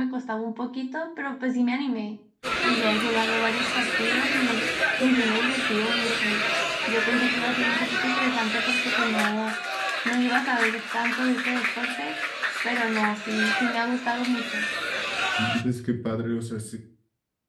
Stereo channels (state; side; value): identical; both; correlation 1.00